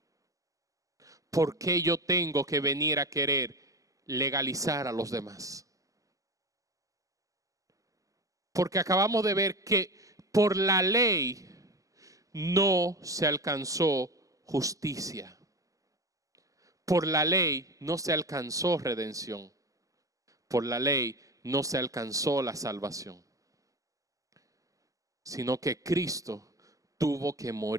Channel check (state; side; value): late; left; 0.16 ms